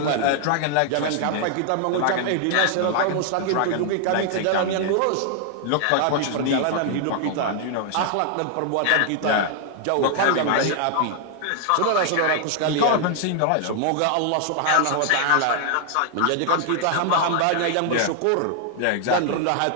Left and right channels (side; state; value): both; different; correlation 0.00